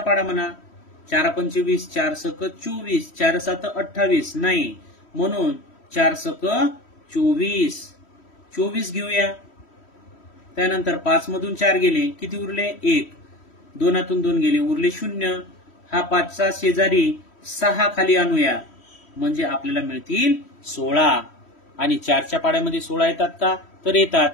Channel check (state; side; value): late; right; 3.1 ms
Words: म्हणा. 4 25, 4 सक 24, 4 7 28. नाही, म्हणून 4 सक 24. 24 घेऊया. त्यानंतर 5 मधून 4 गेले, किती उरले? 1. 2तून 2 गेले, उरले 0. हा 5चा शेजारी 6 खाली आणूया, म्हणजे आपल्याला मिळतील 16. आणि 4च्या पाड्यामध्ये 16 येतात का? तर येतात.